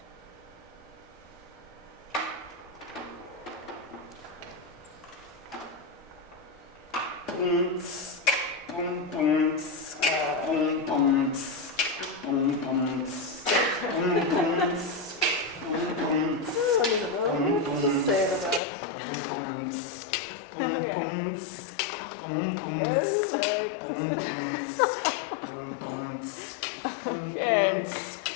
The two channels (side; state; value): right; drops out; at 18.6 s